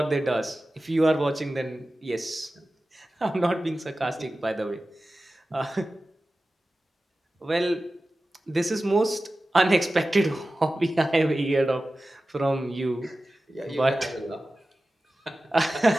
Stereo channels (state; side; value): normal; both; correlation 0.95